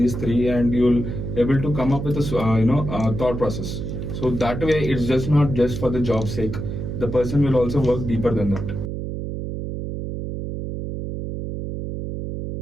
3, and you'll able to come up with a thought process. So that way it's just not just for the job's sake. The person will also work deeper than that.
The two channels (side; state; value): right; noise; hum, 5 dB below the sound